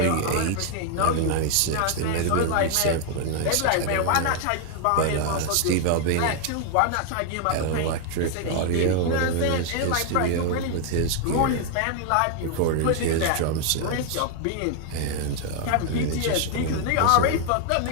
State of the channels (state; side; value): different; both; correlation 0.00